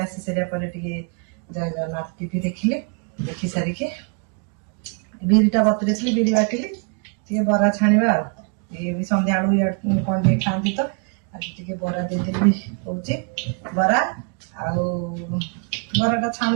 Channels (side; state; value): left; quieter; 37.3 dB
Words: ଆସି ସାରିବା ପରେ ଟିକେ ଜୟ ଜଗନ୍ନାଥ ଟିଭି ଦେଖିଲି। ଦେଖି ସାରିକି ବିରିଟା ବତୁରେଇଥିଲି, ବିରି ବାଟିଲି। ଟିକେ ବରା ଛାଣିବା ଆଉ। ଇଏ ବି ସନ୍ଧ୍ୟାବେଳୁ କଣ ଟିକେ ଖାଆନ୍ତି ତ, ଆଜି ଟିକେ ବରା ଦେଇଦେବି କହୁଛି। ବରା ଆଉ ବରାଟା